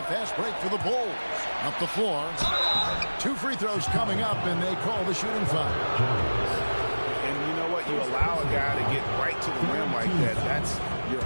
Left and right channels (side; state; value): both; inverted; correlation -1.00